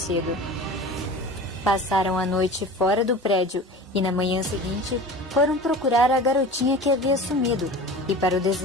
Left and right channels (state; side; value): normal; both; correlation 0.36